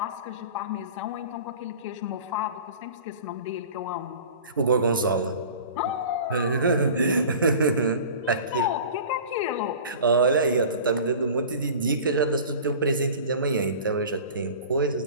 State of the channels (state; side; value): inverted; both; correlation -0.40